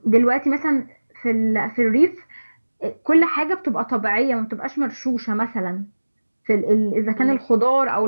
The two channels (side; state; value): both; inverted; correlation -1.00